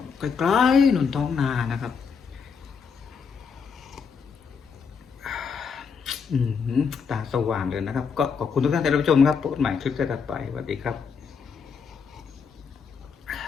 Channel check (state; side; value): quieter; right; 5.9 dB